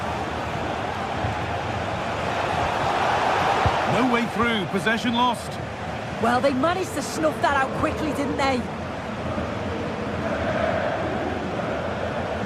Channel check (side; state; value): both; identical; correlation 1.00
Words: No way through, possession lost. Well, they managed to snuff that out quickly, didn't they?